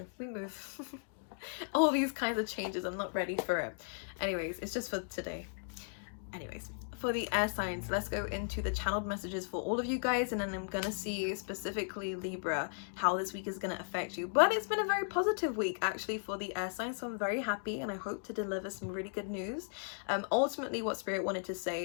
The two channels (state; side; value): silent; right; digital silence